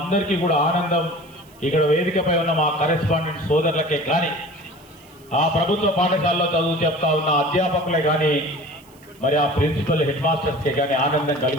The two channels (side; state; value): right; noise; hiss, 28 dB below the sound